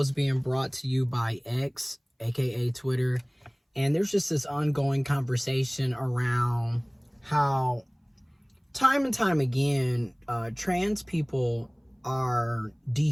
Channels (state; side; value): identical; both; correlation 1.00